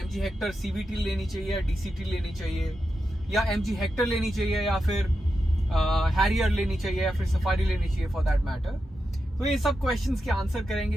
हेक्टर CVT लेनी चाहिए या DCT लेनी चाहिए, या MG हेक्टर लेनी चाहिए, या फिर हैरियर लेनी चाहिए, या फिर सफारी लेनी चाहिए फॉर दैट मैटर। तो ये सब क्वेश्चंस के आंसर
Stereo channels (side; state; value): both; normal; correlation 0.88